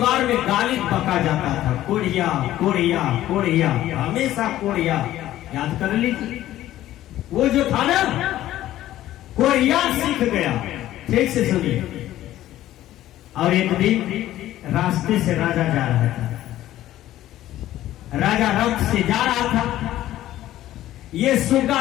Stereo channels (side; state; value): right; quieter; 13.9 dB